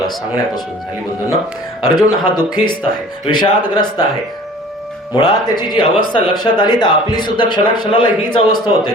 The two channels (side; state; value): both; normal; correlation 0.47